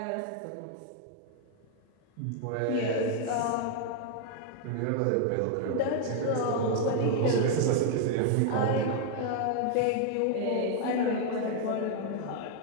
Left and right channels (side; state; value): both; different; correlation 0.00